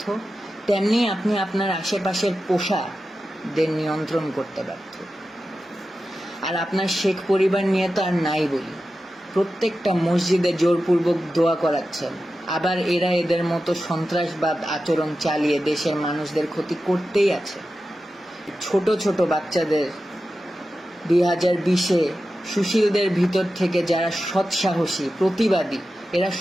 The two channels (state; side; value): normal; both; correlation 0.92